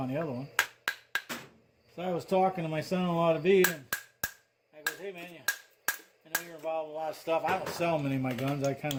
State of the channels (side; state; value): both; identical; correlation 1.00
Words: the other one. So I was talking to my son-in-law to be, and I goes, hey man, I know you're involved in a lot of stuff. I don't sell many of my guns. I kind